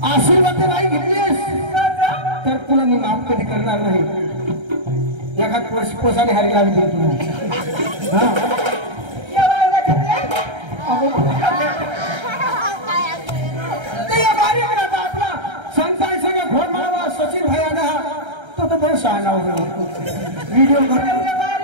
आशीर्वाद नाही घेतलीस तर तुला मी माफ कधी करणार नाही. एखाद पोसाने हारी लागली तुला. आपला संतान सगळं घोड माळवा सचिन भाई आला तो तर बरं शहाणा व्हिडिओ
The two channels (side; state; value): left; late; 1.3 ms